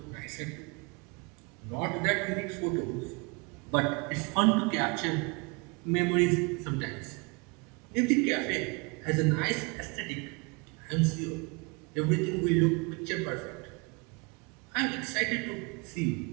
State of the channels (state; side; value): quieter; left; 30.3 dB